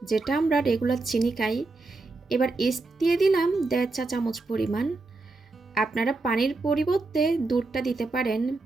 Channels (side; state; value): left; quieter; 3.4 dB